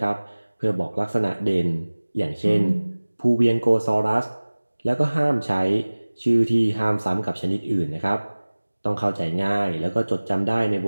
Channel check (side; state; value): both; inverted; correlation -1.00